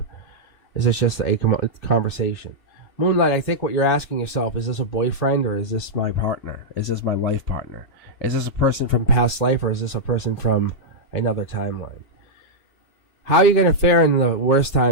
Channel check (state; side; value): late; right; 2.8 ms